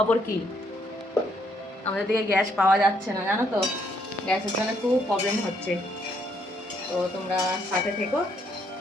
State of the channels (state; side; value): normal; both; correlation 0.71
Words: কি? আমাদের দিকে গ্যাস পাওয়া যাচ্ছে না, জানো তো, গ্যাসের জন্য খুব প্রবলেম হচ্ছে। তো তোমরা সাথে থেকো,